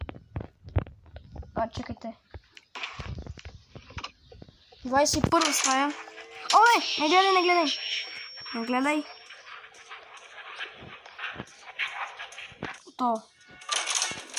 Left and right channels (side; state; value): both; identical; correlation 1.00